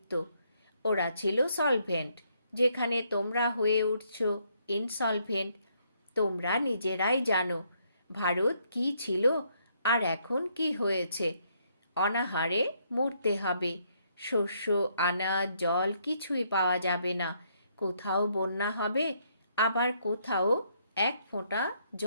ওরা ছিল সলভেন্ট, যেখানে তোমরা হয়ে উঠছ ইনসলভেন্ট। তোমরা নিজেরাই জানো ভারত কি ছিল আর এখন কি হয়েছে। অনাহারে মরতে হবে। শস্য, আনাজ, জল কিছুই পাওয়া যাবে না। কোথাও বন্যা হবে, আবার কোথাও এক ফোঁটা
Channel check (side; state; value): both; inverted; correlation -0.72